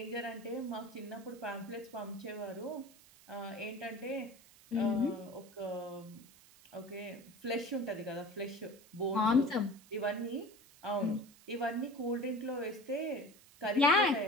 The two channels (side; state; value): right; noise; hiss, 24 dB below the sound